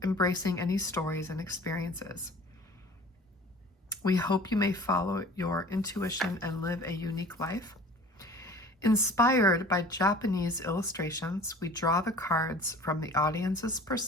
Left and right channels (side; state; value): both; normal; correlation 0.46